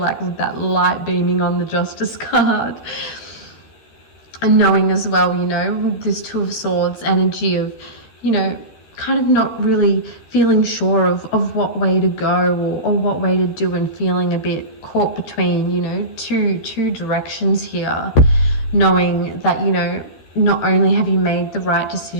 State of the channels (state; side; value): late; right; 13 ms